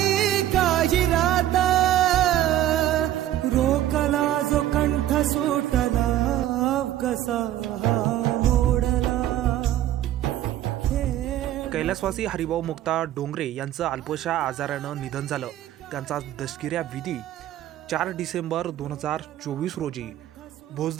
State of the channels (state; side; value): quieter; left; 12.9 dB